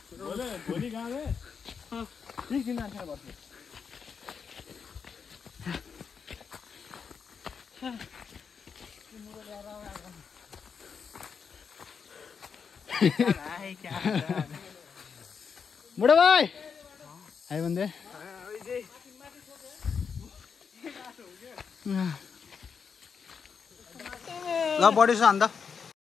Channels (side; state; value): right; quieter; 6.2 dB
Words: भोलि गाउँले 20 दिन जान्छ बस्नु बुढो भाइ आयो भने ल बढी छ अन्त